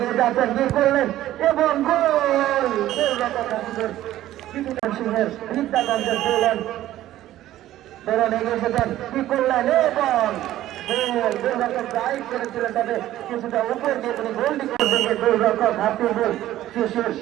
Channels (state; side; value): quieter; left; 13.9 dB